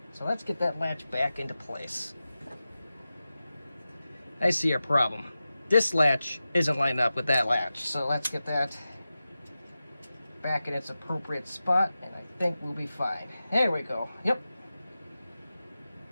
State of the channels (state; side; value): inverted; both; correlation -0.94